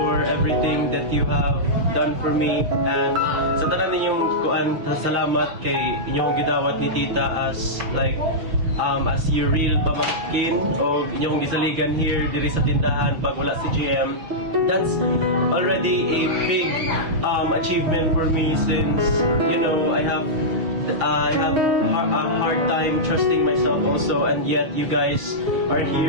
everything that you have done for me. And sa tanan ninyong salamat kay inyong gidawat ni Tita as your real pamangkin o inyong gisaligan here diri sa tindahan pag wala si GM. That's already a big achievement for me, since I have a hard time trusting myself also, and yet you guys are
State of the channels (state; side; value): late; left; 6.4 ms